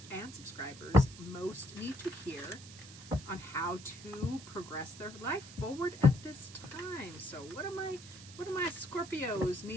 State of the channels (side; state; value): right; noise; hiss, 16 dB below the sound